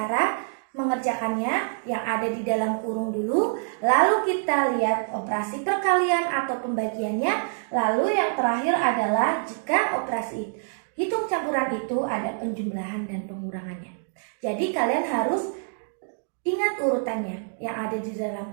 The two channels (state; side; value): silent; left; digital silence